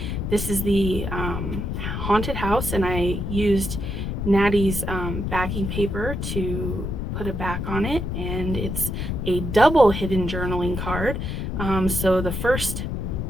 this is the Haunted House, and I used Natty's backing paper to put a back on it, and it's a double hidden journaling card. So the first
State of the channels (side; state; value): left; noise; rumble, 3 dB below the sound